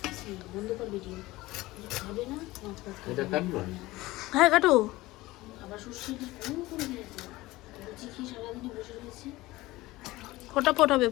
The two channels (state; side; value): quieter; right; 19.0 dB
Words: হ্যাঁ কাটো। ফটাফট হবে,